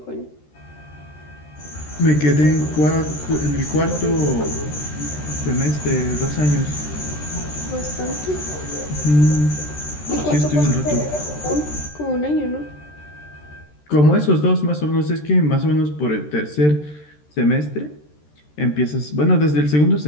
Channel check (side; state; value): right; late; 13 ms